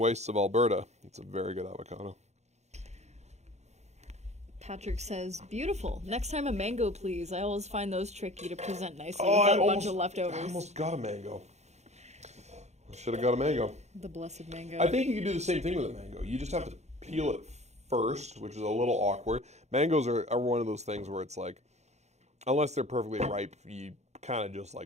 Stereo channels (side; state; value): left; late; 0.32 ms